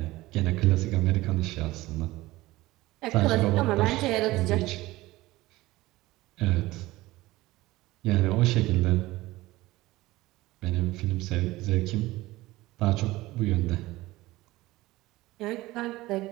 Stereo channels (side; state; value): left; quieter; 18.5 dB